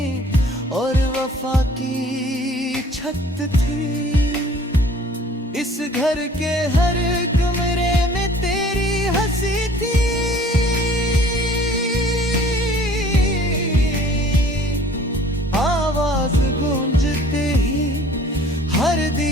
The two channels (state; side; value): normal; both; correlation 0.51